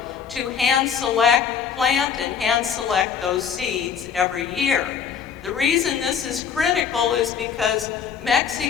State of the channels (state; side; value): quieter; right; 7.3 dB